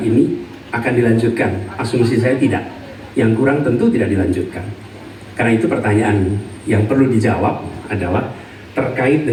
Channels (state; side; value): identical; both; correlation 1.00